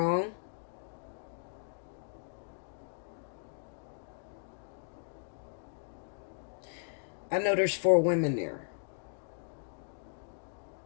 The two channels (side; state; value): right; silent; digital silence